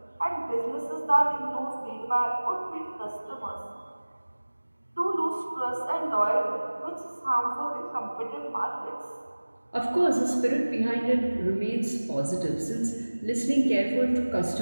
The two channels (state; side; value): inverted; both; correlation -1.00